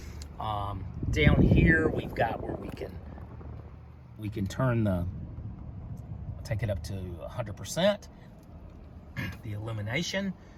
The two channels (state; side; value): identical; both; correlation 1.00